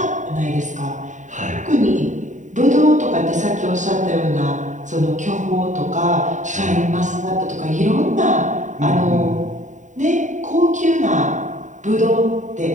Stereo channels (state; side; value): late; left; 0.36 ms